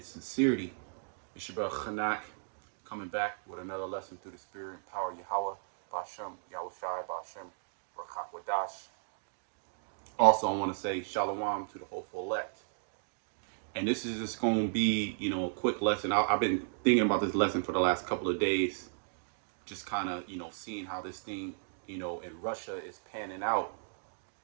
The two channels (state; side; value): silent; left; digital silence